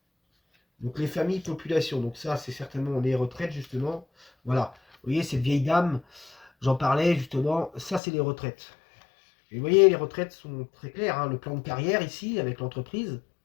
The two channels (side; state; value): right; drops out; at 8.0 s